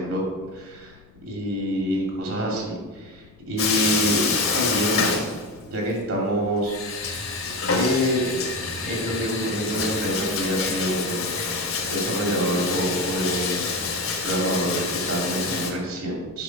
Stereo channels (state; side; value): noise; left; rumble, 26 dB below the sound